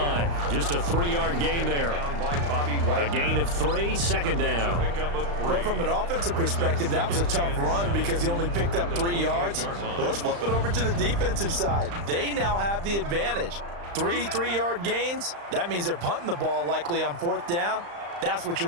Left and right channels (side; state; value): left; late; 35 ms